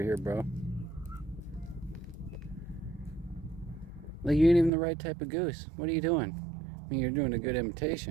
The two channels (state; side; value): drops out; left; at 4.7 s